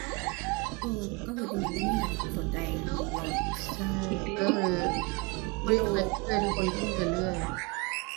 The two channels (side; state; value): left; quieter; 27.4 dB